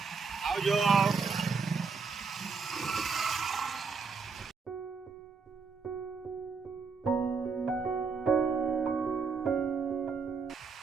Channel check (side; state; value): left; quieter; 5.1 dB